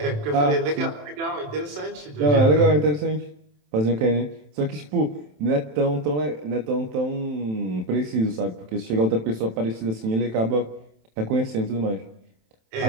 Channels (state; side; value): late; left; 27 ms